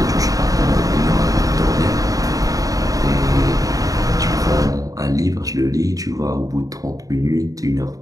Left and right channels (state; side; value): late; left; 0.17 ms